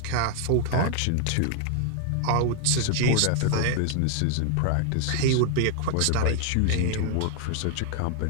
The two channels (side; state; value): both; different; correlation 0.00